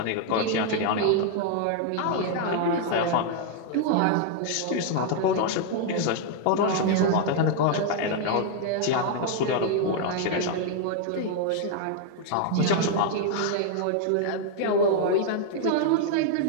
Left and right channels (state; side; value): different; both; correlation 0.00